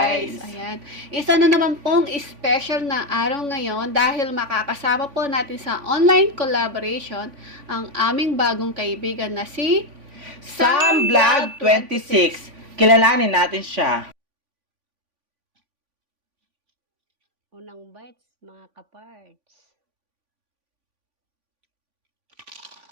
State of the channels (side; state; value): left; late; 3.5 ms